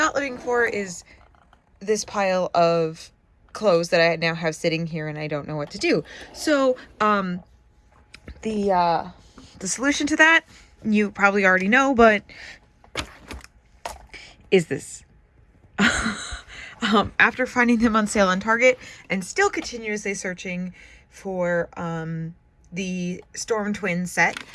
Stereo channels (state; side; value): identical; both; correlation 1.00